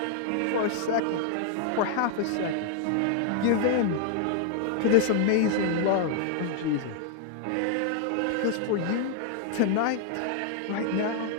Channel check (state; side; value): different; both; correlation 0.00